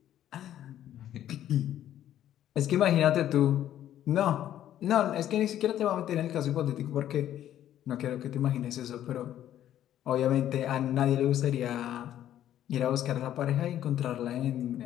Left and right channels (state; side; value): quieter; right; 11.7 dB